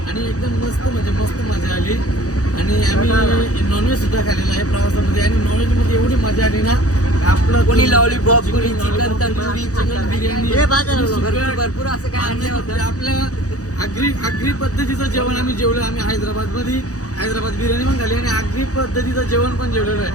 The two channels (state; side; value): late; right; 0.66 ms